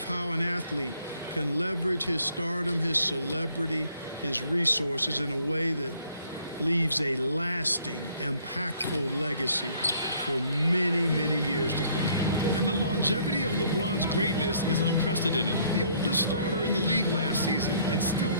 how an athlete can leverage his stardom, his celebrity, his resources in a way that leaves a lasting, impactful legacy for many, many years to come. And the longevity of LeBron's greatness is unprecedented. The oldest starter in the league last season and still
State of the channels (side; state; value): both; inverted; correlation -0.62